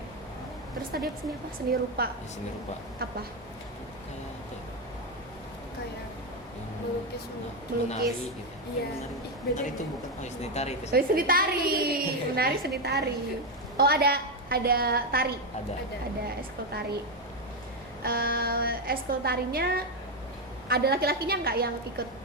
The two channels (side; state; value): both; normal; correlation 0.08